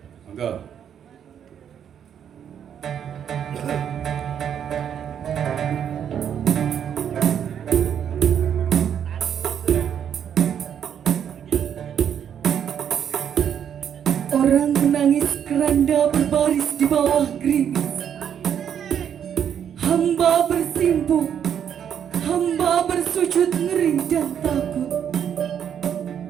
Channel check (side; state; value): left; quieter; 8.8 dB